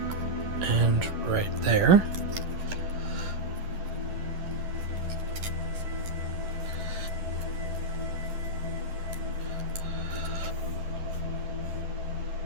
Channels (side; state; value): left; late; 11 ms